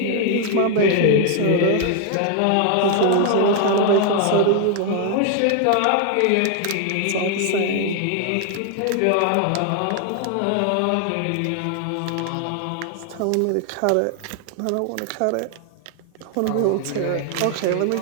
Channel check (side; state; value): both; different; correlation 0.00